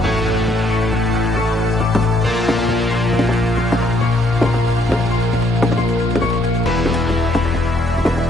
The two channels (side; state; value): both; normal; correlation 0.69